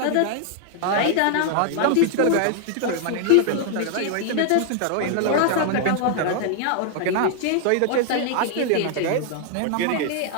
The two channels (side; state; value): both; different; correlation 0.00